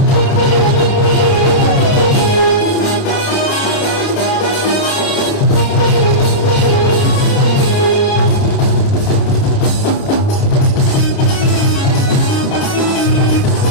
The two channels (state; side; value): late; right; 29 ms